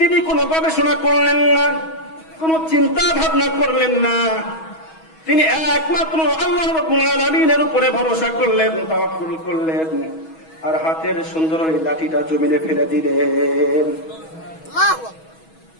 কোনো গবেষণা করলেন না, কোনো চিন্তা ভাবনা করলেন না, তিনি একমাত্র আল্লাহ রাব্বুল আলামিনের উপরে ভরসা করলেন, তাওয়াক্কুল করলেন, আর হাতের সুন্দর ওই লাঠিটা জমিনে ফেলে দিলেন।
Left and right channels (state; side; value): late; right; 6.2 ms